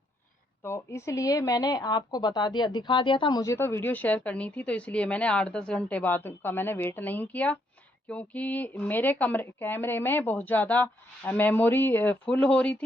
तो इसलिए मैंने आपको बता दिया, दिखा दिया था, मुझे तो वीडियो शेयर करनी थी, तो इसलिए मैंने 8-10 घंटे बाद का मैंने वेट नहीं किया, क्योंकि मेरे कैमरे में बहुत ज़्यादा मेमोरी फुल हो रही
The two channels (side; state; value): both; normal; correlation 0.74